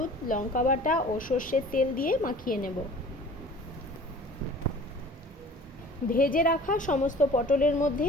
লঙ্কা বাটা ও সর্ষের তেল দিয়ে মাখিয়ে নেব। ভেজে রাখা সমস্ত পটলের মধ্যে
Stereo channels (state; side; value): normal; both; correlation 0.45